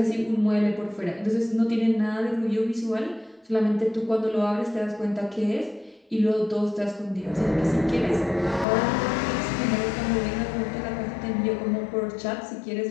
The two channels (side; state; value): right; drops out; at 8.7 s